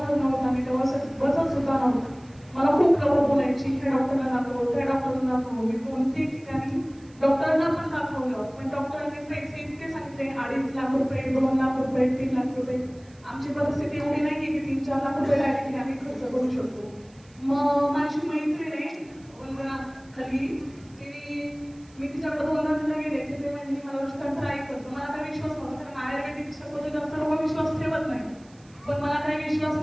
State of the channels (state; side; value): noise; right; hiss, 29 dB below the sound